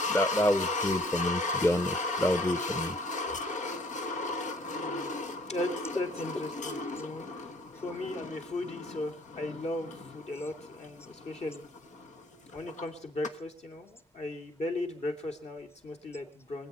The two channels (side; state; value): both; normal; correlation 0.60